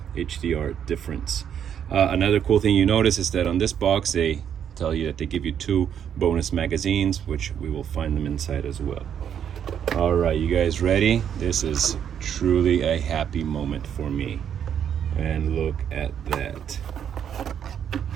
HDR difference. Another cool thing you notice is that on this box, they tell you that they give you 2 bonus magazines, which we will find them inside as well. All right, you guys ready? This is truly a happy moment for me. And look at that.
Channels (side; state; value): left; quieter; 8.8 dB